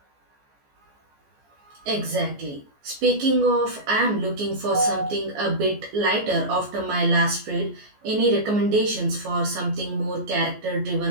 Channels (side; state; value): left; late; 14 ms